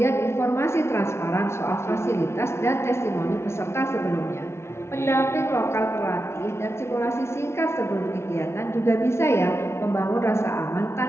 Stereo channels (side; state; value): right; late; 0.13 ms